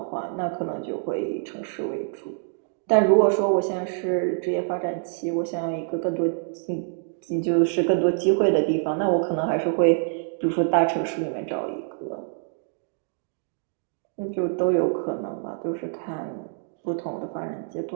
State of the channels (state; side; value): silent; left; digital silence